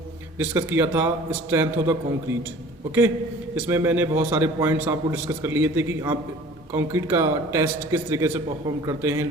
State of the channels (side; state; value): both; normal; correlation 0.47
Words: डिस्कस किया था strength of the concrete. Okay, इसमें मैंने बहुत सारे पॉइंट्स आपको डिस्कस कर लिए थे कि आप कंक्रीट का टेस्ट किस तरीके से परफॉर्म करते हैं,